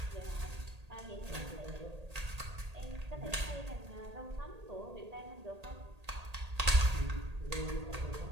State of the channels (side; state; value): left; late; 1.8 ms